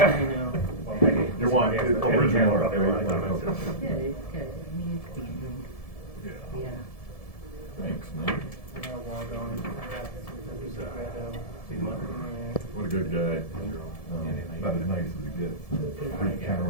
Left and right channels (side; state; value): right; late; 1.7 ms